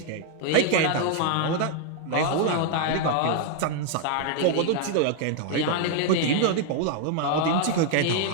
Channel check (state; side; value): different; both; correlation 0.00